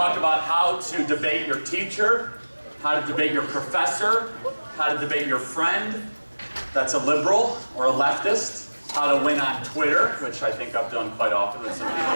about how to debate your teacher, how to debate your professor, how to debate your friend that's a liberal or a leftist, how to win on Twitter, which I think I've done quite often with some people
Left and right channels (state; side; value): inverted; both; correlation -1.00